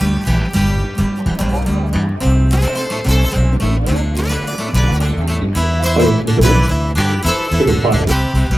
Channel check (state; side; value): normal; both; correlation 0.96